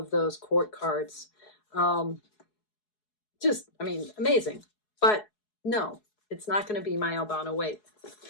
those court cards. Just, I mean, amazing. But no, it's not going to be my Albano Waite.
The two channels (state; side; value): late; right; 4.7 ms